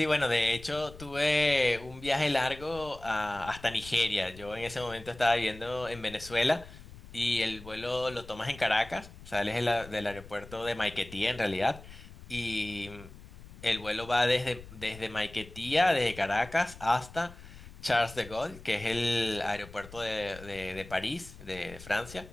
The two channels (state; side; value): noise; left; rumble, 17 dB below the sound